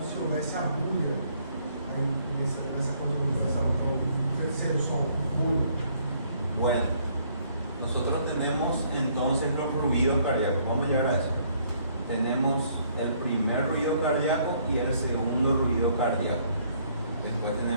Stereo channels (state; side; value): inverted; both; correlation -0.65